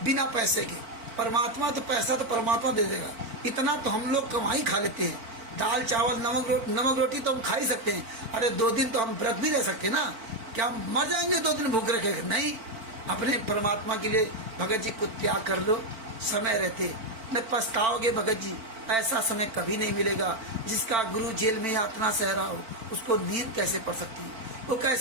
बिना पैसे की। परमात्मा तो पैसा तो परमात्मा दे देगा, इतना तो हम लोग कमाई खा लेते हैं। दाल चावल नमक रोटी तो हम खा ही सकते हैं। अरे 2 दिन तो हम व्रत भी रह सकते हैं ना, क्या हम मर जाएंगे 2 दिन भूख रखे? नहीं, अपने परमात्मा के लिए भगत जी को त्याग कर लो समय रहते। न पछताओगे भगत जी, ऐसा समय कभी नहीं मिलेगा। जिसका गुरु जेल में यातना सह रहा हो उसको नींद कैसे पड़ सकती है, वो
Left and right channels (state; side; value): late; left; 4.5 ms